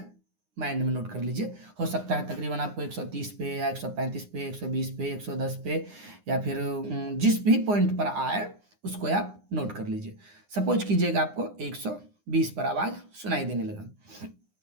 नोट कर लीजिए। हो सकता है तकरीबन आपको 130 पे या 135 पे, 120 पे, 110 पे, या फिर जिस भी पॉइंट पर आए उसको आप नोट कर लीजिए। सपोज कीजिएगा आपको 120 पर आवाज़ सुनाई देने लगा।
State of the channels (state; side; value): late; left; 9.8 ms